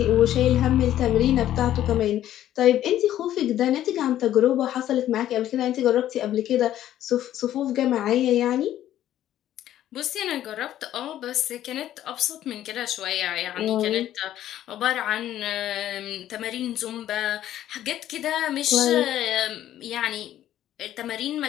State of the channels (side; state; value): right; quieter; 12.3 dB